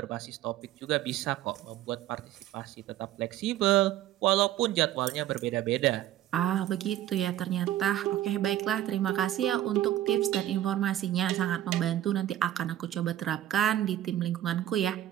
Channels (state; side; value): quieter; left; 12.9 dB